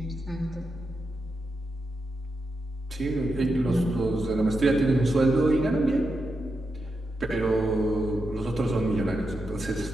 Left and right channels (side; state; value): both; normal; correlation 0.86